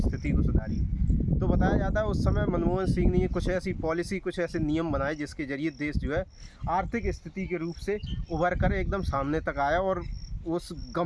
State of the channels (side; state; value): both; identical; correlation 1.00